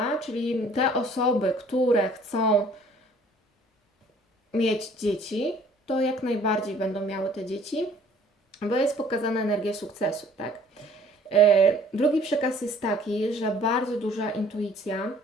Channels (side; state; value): both; normal; correlation 0.55